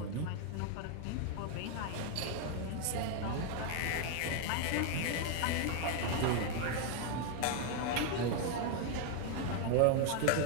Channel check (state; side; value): different; both; correlation 0.00